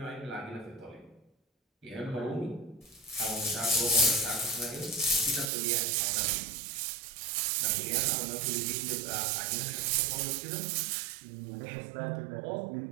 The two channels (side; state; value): left; drops out; at 5.5 s